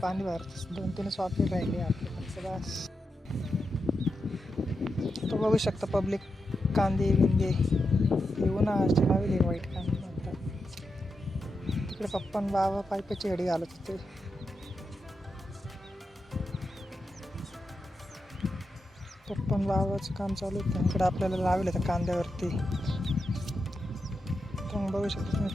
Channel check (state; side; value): normal; both; correlation 0.87